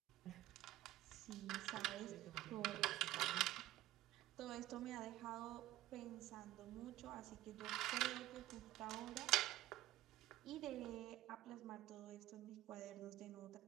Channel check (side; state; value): left; quieter; 15.4 dB